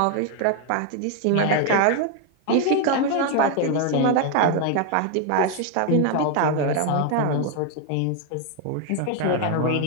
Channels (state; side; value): different; both; correlation 0.01